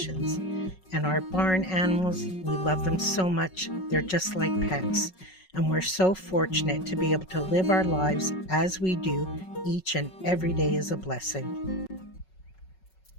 And our barn animals, we love them so much, they're just like pets. And we're so fortunate to be able to live our lives as we do. Each and every day is a blessing.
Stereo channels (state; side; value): late; right; 5.4 ms